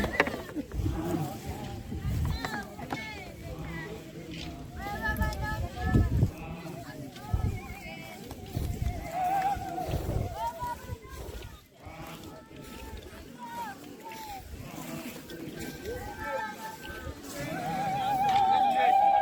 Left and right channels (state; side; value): identical; both; correlation 1.00